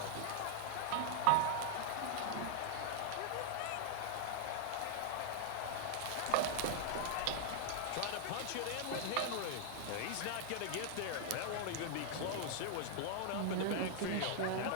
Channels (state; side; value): different; both; correlation -0.01